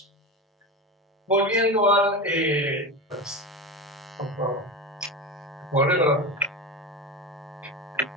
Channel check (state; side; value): normal; both; correlation 0.23